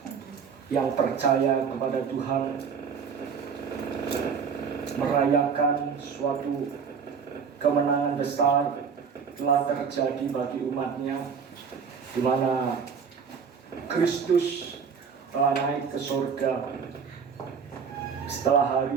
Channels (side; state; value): left; quieter; 6.3 dB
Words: yang percaya kepada Tuhan, merayakan suatu kemenangan besar telah terjadi bagi umatnya, di mana Kristus telah naik ke surga setelah